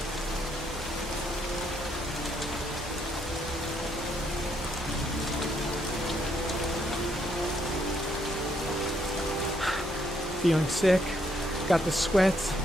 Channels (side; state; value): both; normal; correlation 0.72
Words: Feeling sick, got the sweats,